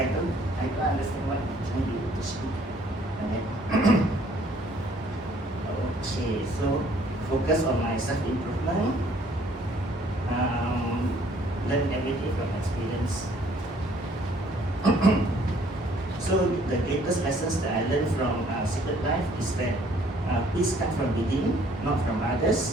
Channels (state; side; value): normal; both; correlation 0.60